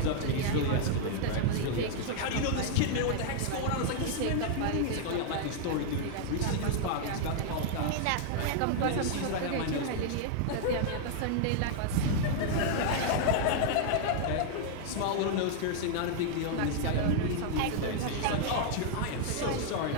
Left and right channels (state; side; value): different; both; correlation 0.00